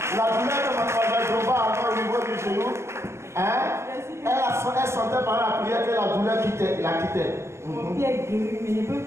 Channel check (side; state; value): left; late; 0.13 ms